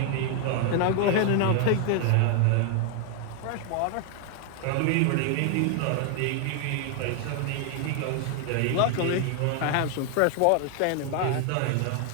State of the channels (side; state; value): both; different; correlation 0.00